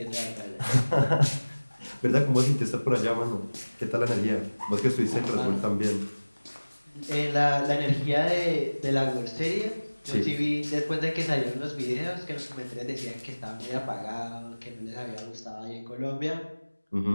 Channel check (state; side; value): inverted; both; correlation -1.00